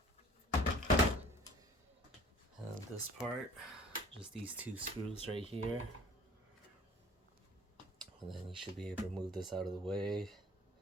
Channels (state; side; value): normal; both; correlation 0.50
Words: And this part, just these 2 screws right here. And then you should be able to move this out of the way.